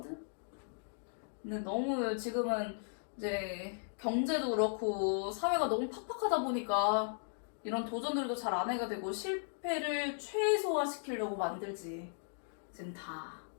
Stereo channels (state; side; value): silent; right; digital silence